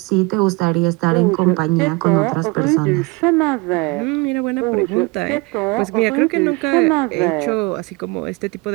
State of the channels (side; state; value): left; quieter; 26.0 dB